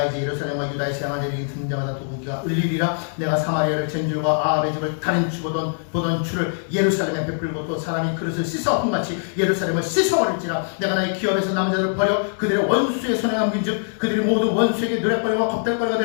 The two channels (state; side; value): silent; right; digital silence